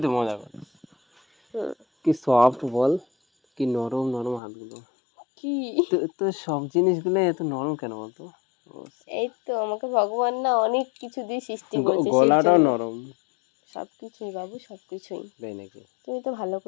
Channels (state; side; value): drops out; right; at 4.4 s